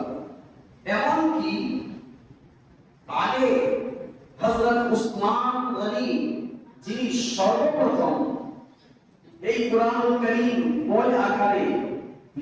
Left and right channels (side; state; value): both; identical; correlation 1.00